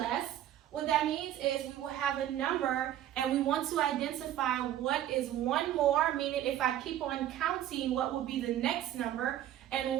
What that means is we will have a number and we want to identify what is one more, meaning if I keep on counting, what will be the next number, and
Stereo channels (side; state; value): left; quieter; 12.0 dB